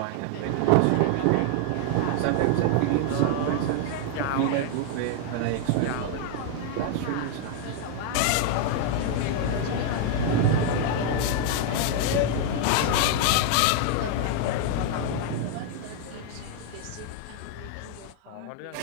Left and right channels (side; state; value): both; different; correlation 0.00